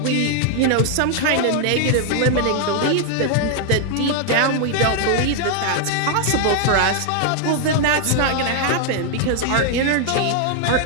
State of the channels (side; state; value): both; different; correlation 0.00